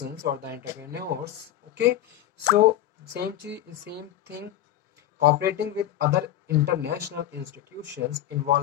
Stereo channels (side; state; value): right; quieter; 12.4 dB